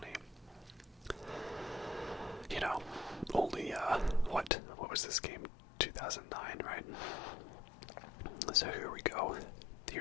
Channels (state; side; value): drops out; right; at 4.5 s